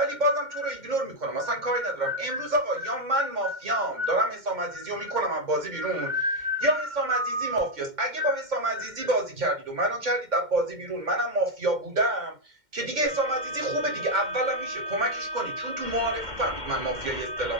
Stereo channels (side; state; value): left; late; 2.1 ms